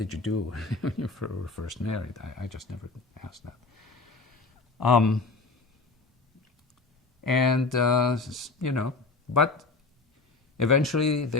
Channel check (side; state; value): right; quieter; 3.8 dB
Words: you do when you were first married? I just never asked that. But eventually